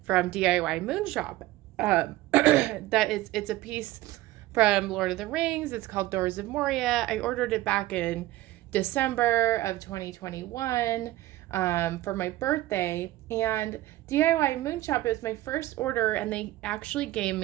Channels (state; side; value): quieter; left; 16.6 dB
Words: from DIYmoonshop. It's a piece from Lord of the Rings. It's called Doors of Moria. I ordered it back in December of 2021 for my birthday, and DIYmoonshop is my first order, and they actually gave